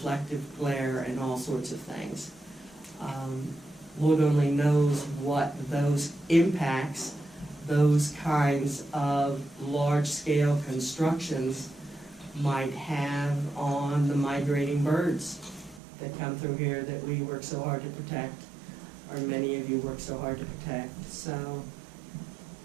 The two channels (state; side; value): drops out; left; at 15.8 s